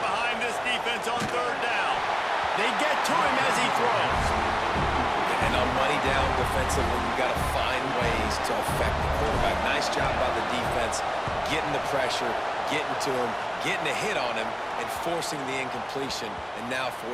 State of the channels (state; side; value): identical; both; correlation 1.00